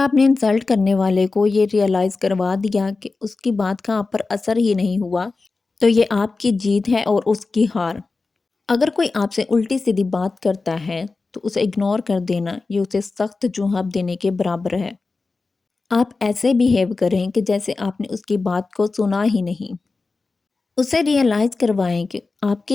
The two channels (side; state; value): right; quieter; 3.9 dB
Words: نے انسلٹ کرنے والے کو یہ ریئلائز کروا دیا کہ اس کی بات کا آپ پر اثر ہی نہیں ہوا تو یہ آپ کی جیت ہے اور اس کی ہار۔ اگر کوئی آپ سے الٹی سیدھی بات کرتا ہے تو اسے اگنور کر دینا یہ اسے سخت جواب دینے کے برابر ہے۔ آپ ایسے بیہیو کریں کہ جیسے آپ نے اس کی بات کو سنا ہی نہیں، اسے ریئلائز کروائیں کہ آپ